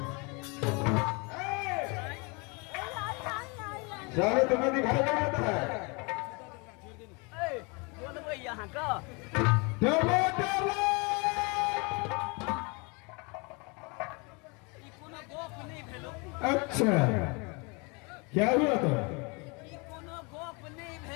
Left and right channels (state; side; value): quieter; right; 30.4 dB